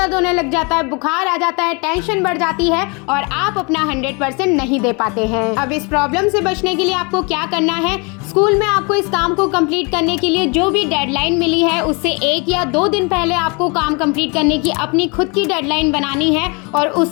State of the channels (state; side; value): quieter; right; 31.1 dB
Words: होने लग जाता है, बुखार आ जाता है, टेंशन बढ़ जाती है और आप अपना 100% नहीं दे पाते हैं। अब इस प्रॉब्लम से बचने के लिए आपको क्या करना है, स्कूल में आपको इस काम को कंप्लीट करने के लिए जो भी डेडलाइन मिली है उससे 1 या 2 दिन पहले आपको काम कंप्लीट करने की अपनी खुद की डेडलाइन बनानी है और